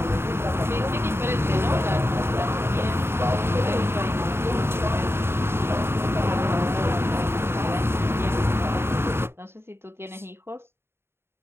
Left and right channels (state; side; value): late; left; 0.12 ms